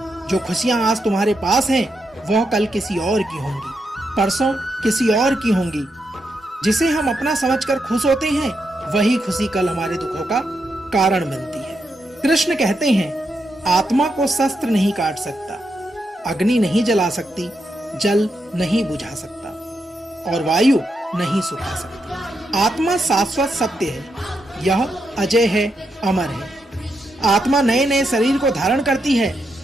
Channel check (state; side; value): normal; both; correlation 0.83